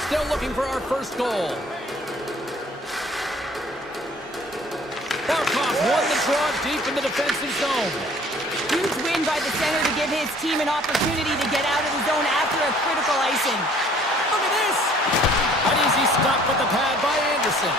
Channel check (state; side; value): normal; both; correlation 0.55